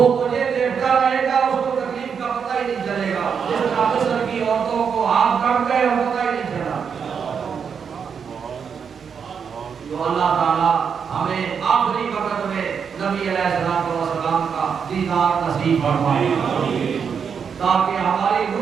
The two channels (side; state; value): left; quieter; 6.7 dB